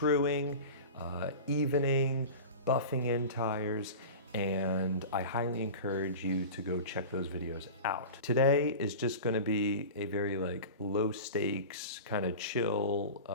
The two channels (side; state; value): both; inverted; correlation -0.32